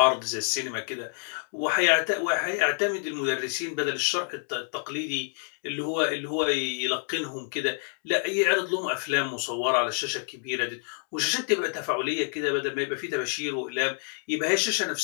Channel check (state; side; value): silent; right; 60 dB below the other